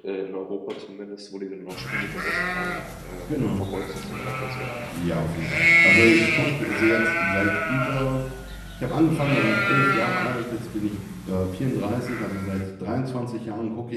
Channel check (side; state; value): both; identical; correlation 1.00